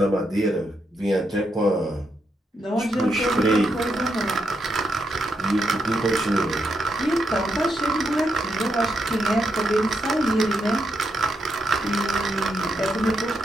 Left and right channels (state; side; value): normal; both; correlation 0.81